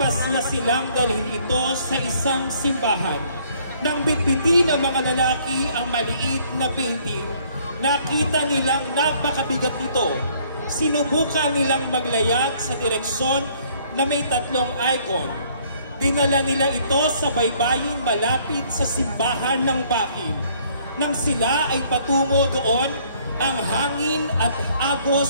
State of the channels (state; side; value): inverted; both; correlation -0.62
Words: silang dalhin ito sa isang simbahan. Nang bitbitin ng mga lalaki ang maliit na painting, nakita nilang napakabigat nito. Sinubukan nilang maglayag sa direksyon na may tatlong icon. Dinala nila ito sa baybayin malapit sa simbahan ng Bakin. Nang sila ay patungo doon, ang hangin at